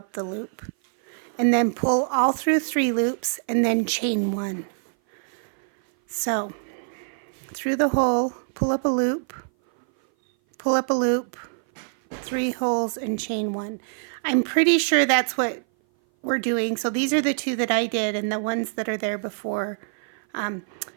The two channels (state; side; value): silent; left; 58 dB below the other